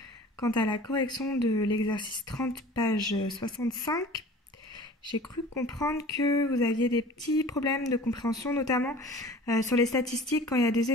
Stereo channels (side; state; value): both; normal; correlation 0.43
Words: quant à la correction de l'exercice 30, page 65. J'ai cru comprendre que vous aviez des petits problèmes de compréhension, notamment sur les statistiques quand il y a des